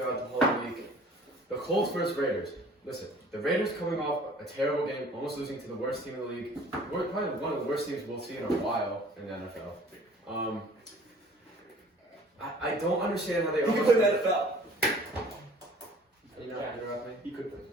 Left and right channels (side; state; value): both; normal; correlation 0.50